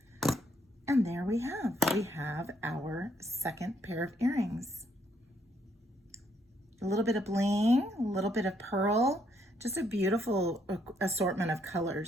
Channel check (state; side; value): normal; both; correlation 0.72